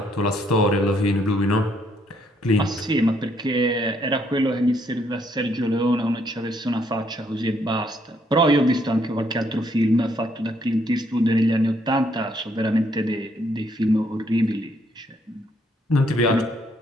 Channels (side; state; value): both; normal; correlation 0.70